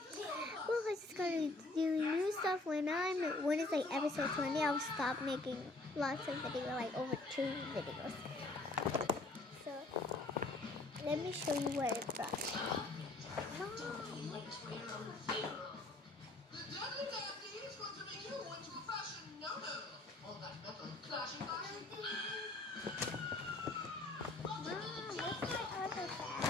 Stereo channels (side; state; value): right; quieter; 3.0 dB